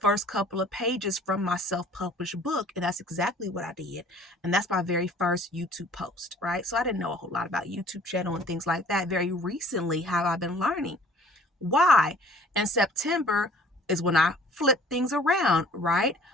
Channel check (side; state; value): both; normal; correlation 0.51